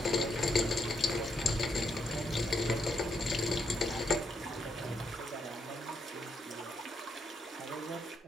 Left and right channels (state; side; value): normal; both; correlation 0.78